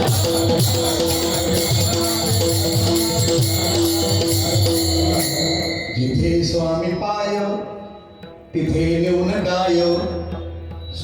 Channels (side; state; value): both; identical; correlation 1.00